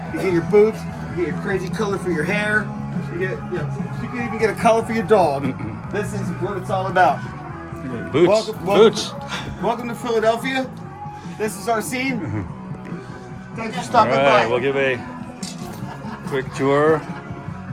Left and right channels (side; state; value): both; identical; correlation 1.00